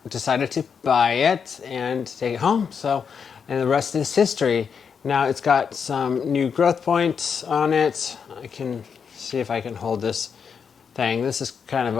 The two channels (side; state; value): right; quieter; 6.6 dB